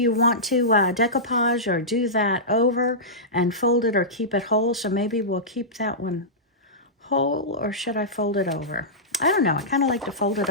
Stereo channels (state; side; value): normal; both; correlation -0.15